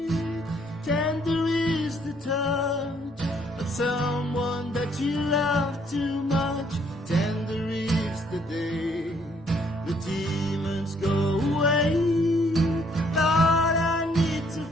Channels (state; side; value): normal; both; correlation 0.66